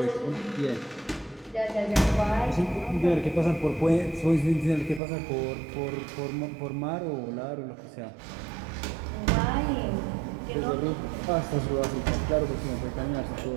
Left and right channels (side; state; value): left; drops out; at 5.0 s